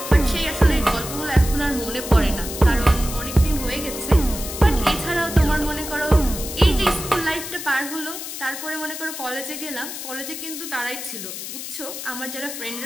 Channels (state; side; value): noise; left; hiss, 8 dB below the sound